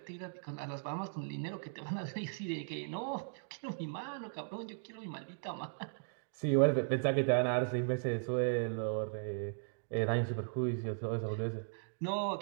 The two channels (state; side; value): silent; left; digital silence